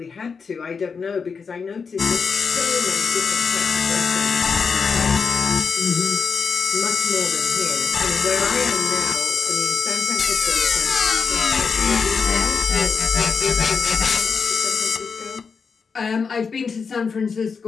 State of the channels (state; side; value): quieter; right; 5.5 dB